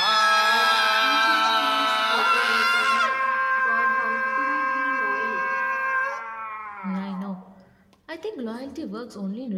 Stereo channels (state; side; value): identical; both; correlation 1.00